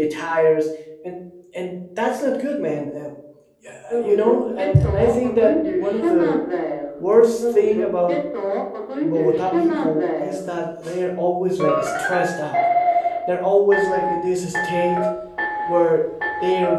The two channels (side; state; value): both; identical; correlation 1.00